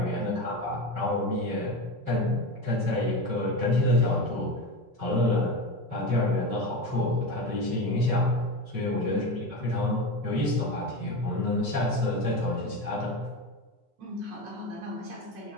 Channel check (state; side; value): late; left; 5.3 ms